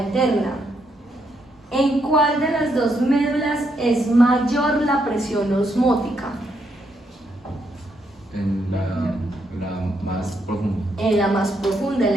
interna. ¿En cuál de las dos médulas es mayor la presión osmótica? En la más profunda. En la más profunda,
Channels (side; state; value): both; normal; correlation 0.77